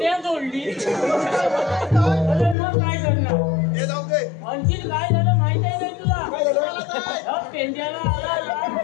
जोडली. अरे मग काय करणार? आणखी काय झालं माहित आहे नाही तुला? पेंड्याला आला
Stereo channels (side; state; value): right; drops out; at 2.6 s